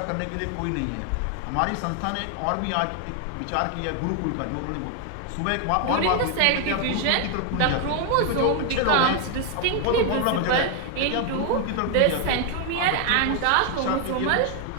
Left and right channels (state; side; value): different; both; correlation 0.00